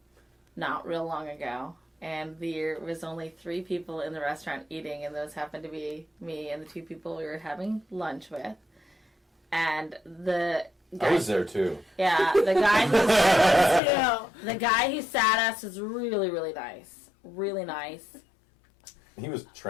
not real long ago, and there was only 3 people in the restaurant eating, and those happened to be me and the 2 people we were having lunch with. And the guy, I was there too. Yeah, the guy who sat us was really, really nice. Really nice. He was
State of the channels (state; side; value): drops out; right; at 13.8 s